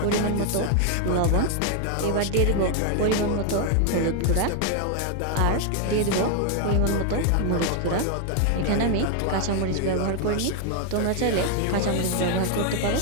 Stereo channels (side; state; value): both; different; correlation 0.00